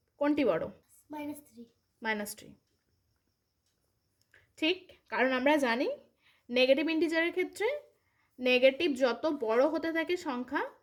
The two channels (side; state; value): both; identical; correlation 1.00